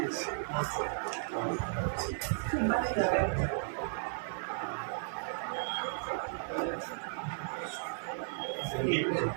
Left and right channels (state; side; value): silent; left; 55 dB below the other